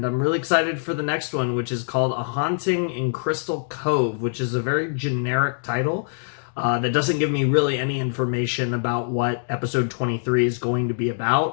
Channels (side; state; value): right; silent; digital silence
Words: I'm really excited for the next one, which is called A Haunting in Crystal Cove, which is a very generic title that doesn't give me really any information about what episode 23 is going to be